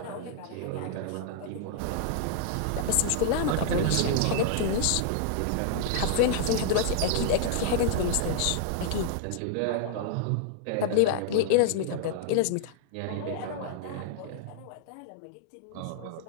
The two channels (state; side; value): different; both; correlation -0.01